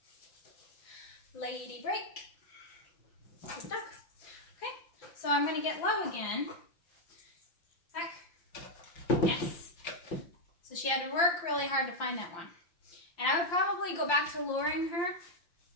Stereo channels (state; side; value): late; right; 5.8 ms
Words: Lady break. Good dog. Okay, so I'm going to get low again. Back. Yes. So she had to work really hard to find that one. And I would probably go back to luring her.